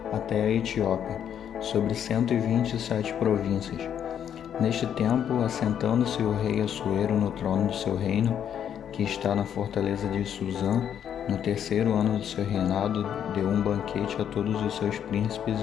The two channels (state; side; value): quieter; right; 9.1 dB